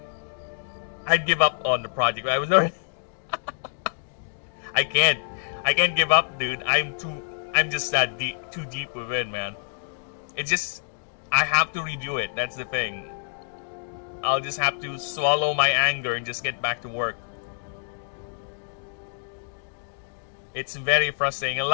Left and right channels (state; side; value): silent; right; digital silence